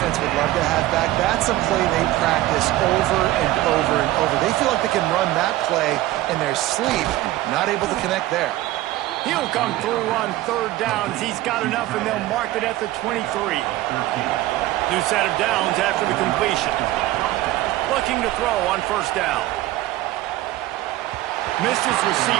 would love to have back. That's a play they practice over and over and over. They feel like they can run that play in their sleep. Not able to connect there. He'll come through on third downs. He's got enough, and they'll mark it at the 23. New set of downs after the completion. Looking to throw on first down. Missed his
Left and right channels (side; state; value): left; quieter; 16.1 dB